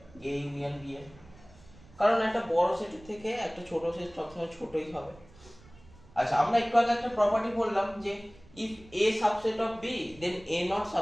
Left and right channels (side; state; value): right; noise; rumble, 23 dB below the sound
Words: A ইউনিয়ন B এর, কারণ একটা বড় সেটের থেকে একটা ছোট সেট সবসময় ছোটই হবে। আচ্ছা, আমরা একটু আগে একটা প্রপার্টি বললাম যে if A subset of B then A not